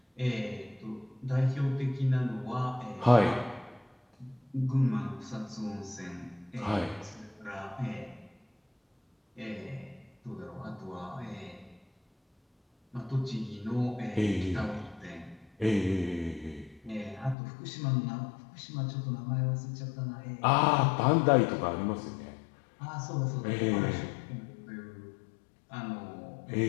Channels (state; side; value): drops out; right; at 17.4 s